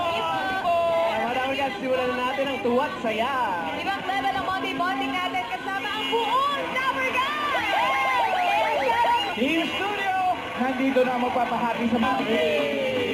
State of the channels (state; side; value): identical; both; correlation 1.00